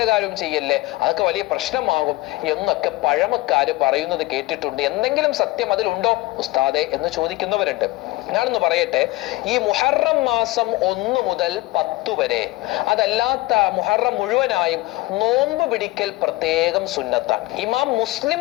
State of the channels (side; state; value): right; quieter; 19.4 dB